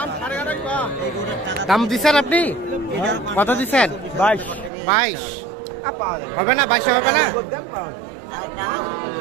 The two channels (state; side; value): drops out; left; at 4.7 s